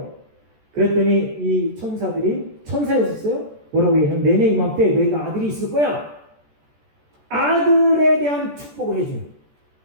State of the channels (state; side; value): late; left; 14 ms